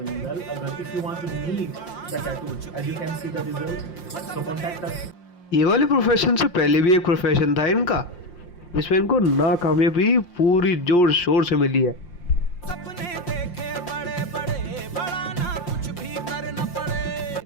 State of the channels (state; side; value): late; right; 5.7 ms